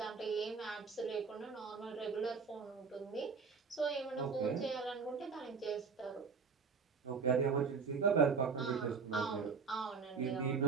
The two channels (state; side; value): quieter; left; 5.3 dB